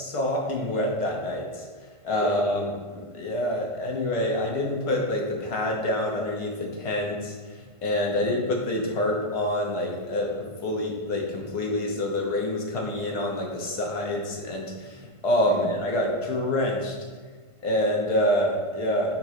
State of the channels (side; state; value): left; late; 1.5 ms